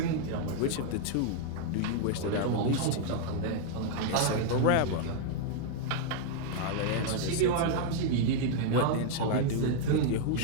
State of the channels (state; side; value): different; both; correlation 0.00